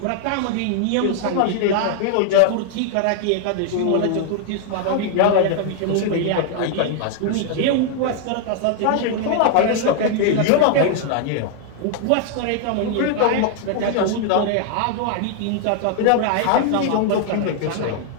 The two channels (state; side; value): different; both; correlation 0.00